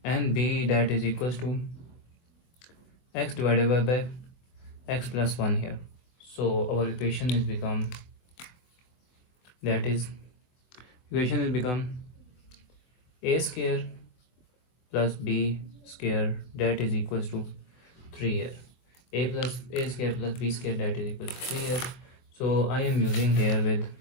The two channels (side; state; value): right; late; 23 ms